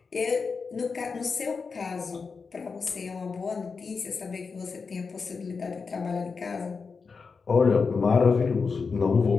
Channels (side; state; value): right; quieter; 5.0 dB